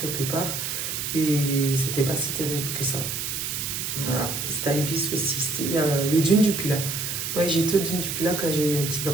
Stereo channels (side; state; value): right; noise; hiss, 3 dB below the sound